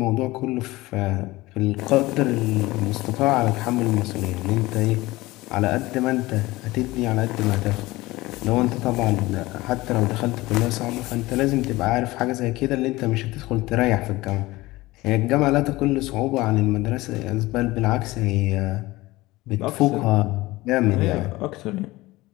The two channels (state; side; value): quieter; right; 19.6 dB